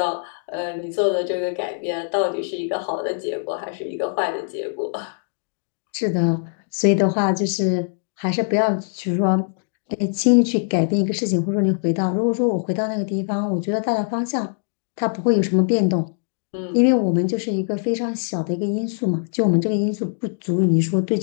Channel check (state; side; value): silent; right; digital silence